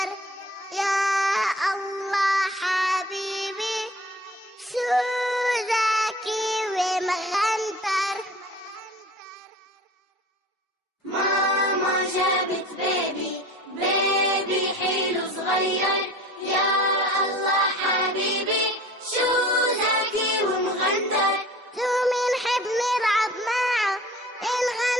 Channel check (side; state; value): both; normal; correlation 0.42